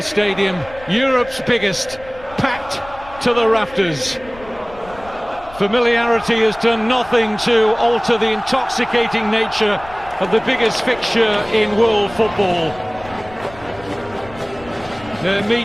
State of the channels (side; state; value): left; noise; rumble, 20 dB below the sound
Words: stadium, Europe's biggest, packed to the rafters. Familiarity has done nothing to alter the intoxicating nature of the biggest fixture in world football. They're